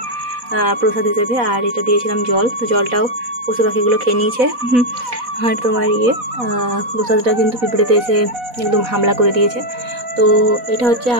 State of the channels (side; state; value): left; late; 4.1 ms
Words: প্রসাদ হিসেবে, আর এটা দিয়েছিলাম জল। তো জলটাও পশু পাখিগুলো খেয়ে নিয়েছে। আর তোমার প্রসাদটা কিন্তু পিঁপড়েতে এসে একদম হামলা করে দিয়েছে। তো এটা হচ্ছে